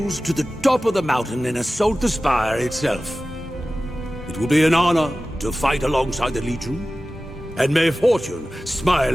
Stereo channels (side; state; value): both; normal; correlation 0.96